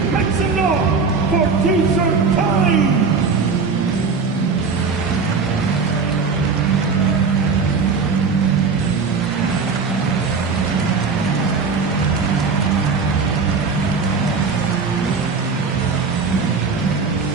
Make some noise for T-shirt time.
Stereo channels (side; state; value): left; quieter; 5.0 dB